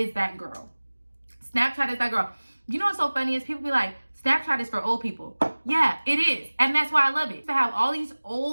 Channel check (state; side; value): inverted; both; correlation -1.00